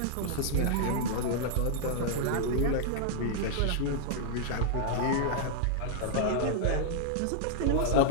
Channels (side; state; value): both; different; correlation 0.00